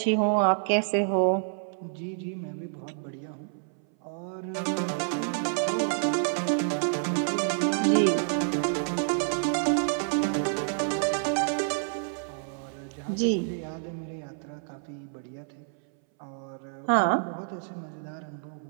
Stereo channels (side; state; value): left; silent; 59 dB below the other